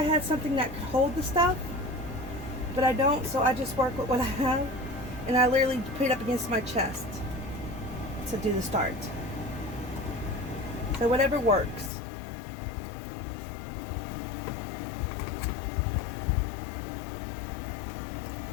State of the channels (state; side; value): drops out; right; at 11.9 s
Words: had something that could hold the stuff, but I don't, so I just work with what I have, and I literally put it up against my chest to do the start. So whatever works.